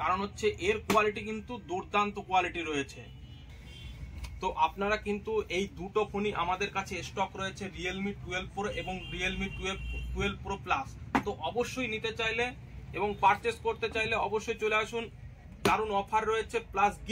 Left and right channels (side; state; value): both; identical; correlation 1.00